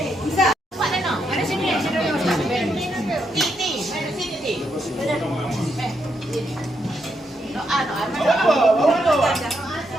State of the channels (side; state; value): both; normal; correlation 0.80